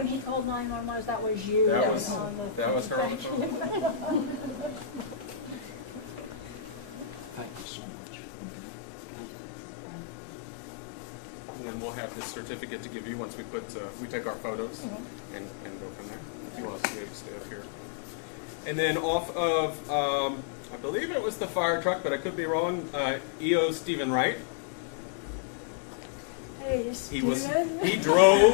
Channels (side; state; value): right; drops out; at 7.7 s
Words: he called 911, that was you. That was her on the phone. Thank you so much. And then we'll have this certificate to give you once we take our photos and go from there. If you want to stay up here. And then off of, I believe it was the fire truck, but I could be wrong, EO Stephen Wright. Hey, Stephen. He